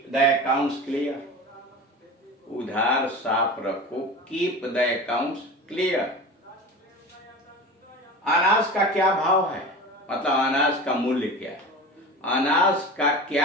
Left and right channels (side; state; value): both; normal; correlation 0.33